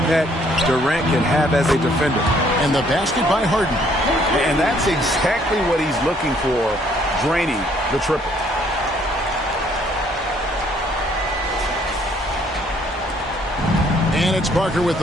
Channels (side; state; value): both; normal; correlation 0.64